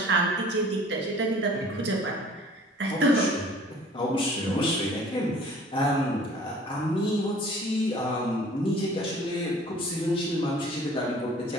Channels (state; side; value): normal; both; correlation 0.50